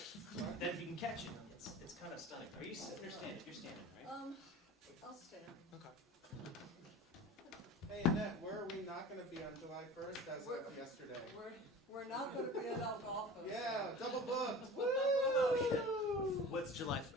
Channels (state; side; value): normal; both; correlation 0.37